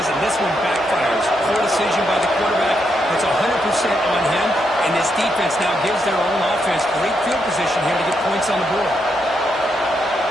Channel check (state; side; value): normal; both; correlation 0.80